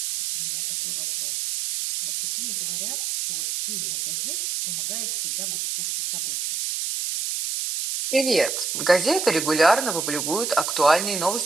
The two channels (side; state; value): right; noise; hiss, 3 dB below the sound